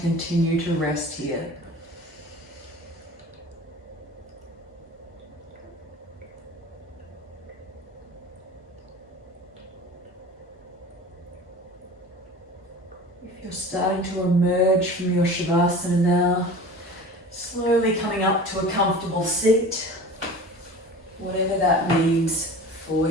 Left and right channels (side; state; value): both; normal; correlation 0.38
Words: continue to rest here. If you're starting to emerge from your Shavasana now, slowly coming up to a comfortable seat, whatever that means for